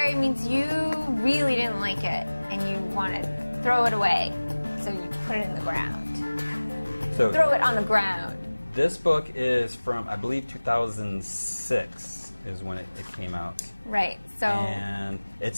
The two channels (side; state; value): both; inverted; correlation -1.00